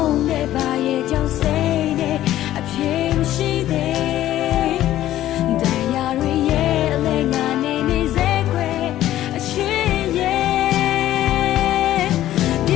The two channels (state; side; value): quieter; right; 13.4 dB